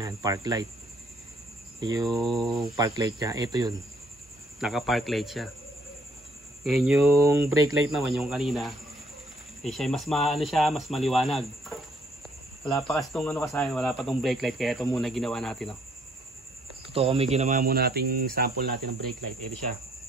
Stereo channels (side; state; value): both; normal; correlation 0.66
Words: park light. Yung park light niya, ito yun. Naka park light siya. Ngayon yung brake light naman, yung kanina, siya mas mas maliwanag. Wala pa kasi itong wala pa itong brake light, kaya ito muna ginawa natin. Totoo kami ginawa muna nating sample natin ng brake light. Ito siya.